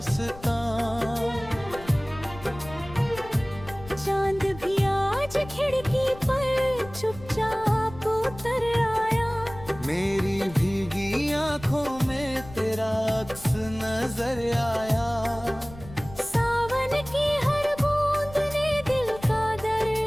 चांद भी आज खिड़की पर चुपचाप उतर आया। मेरी भीगी आंखों में तेरा अक्स नजर आया। सावन की हर बूंद ने दिल का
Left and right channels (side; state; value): left; noise; rumble, 17 dB below the sound